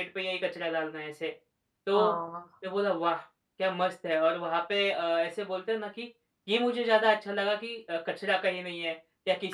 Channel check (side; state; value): both; identical; correlation 1.00